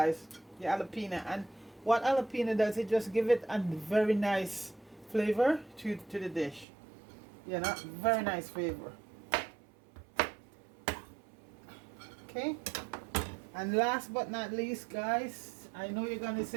The jalapeno. And what jalapeno does, it just give it a very nice flavor to the dish. Very nice flavor. Okay. And last but not least, guys, I know you're gonna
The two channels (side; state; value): left; drops out; at 6.7 s